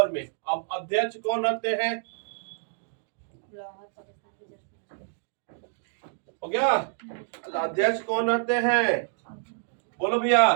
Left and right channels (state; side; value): silent; left; digital silence